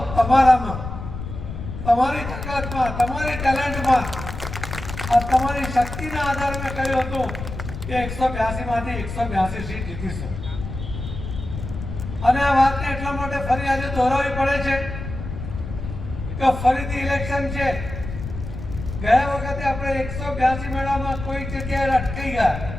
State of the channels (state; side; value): noise; left; rumble, 8 dB below the sound